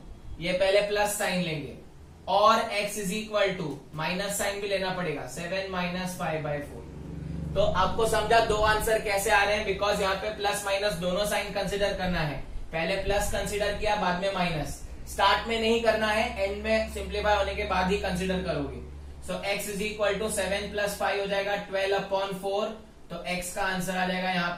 ये पहले प्लस साइन लेंगे और x is equal to minus sign भी लेना पड़ेगा 7 माइनस 5/4। तो आपको समझा दो आंसर कैसे आ रहे हैं, बिकॉज यहाँ पे प्लस माइनस दोनों साइन कंसिडर करना है। पहले प्लस कंसिडर किया, बाद में माइनस। स्टार्ट में नहीं करना है, एंड में सिंप्लीफाई होने के बाद ही कंसिडर करोगे। So x is equal to 7 plus 5 हो जाएगा 12/4। तो x का आंसर आ जाएगा यहाँ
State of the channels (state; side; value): identical; both; correlation 1.00